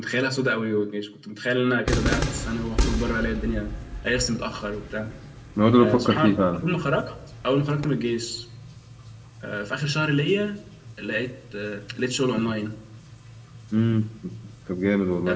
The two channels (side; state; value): both; identical; correlation 1.00